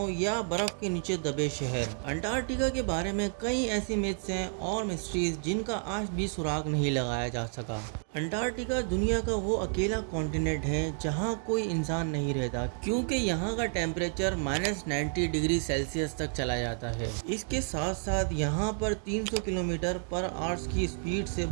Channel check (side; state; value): left; silent; 57 dB below the other